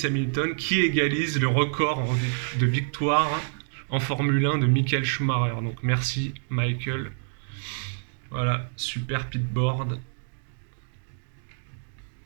Hamilton qui égalise le record de victoire en Formule 1 de Michael Schumacher. Donc merci Michael. Voilà, super pitboard.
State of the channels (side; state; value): left; silent; digital silence